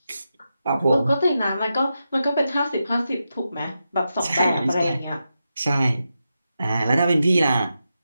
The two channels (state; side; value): inverted; both; correlation -0.88